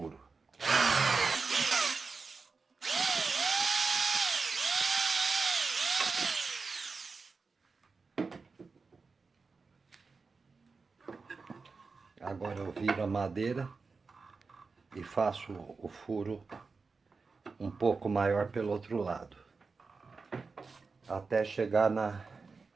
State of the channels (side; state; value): left; quieter; 4.5 dB